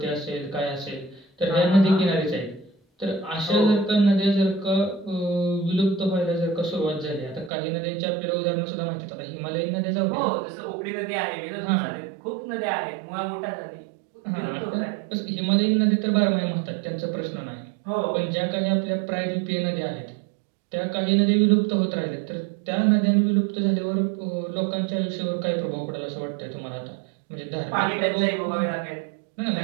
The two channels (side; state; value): left; drops out; at 7.5 s